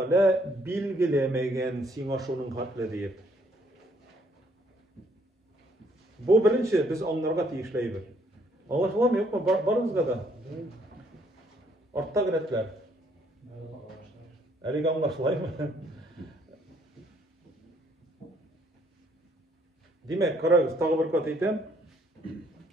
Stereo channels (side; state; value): both; normal; correlation 0.66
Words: bilgilemegen sina şunun hatlı deyip. Bu birinci biz onlarga tiyişleybiz. Anlaşılan mı yok mu? Barınızga da. Artta giretler. Әлеге anlaşılay mı? Demek, karagız, tağı bir kat eytem.